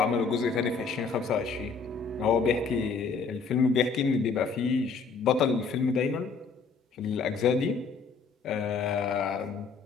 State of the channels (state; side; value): quieter; right; 5.0 dB